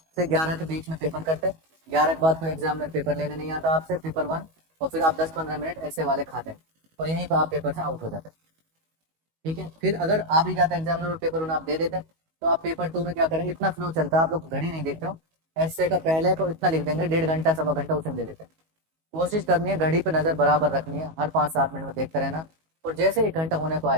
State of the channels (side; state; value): left; late; 19 ms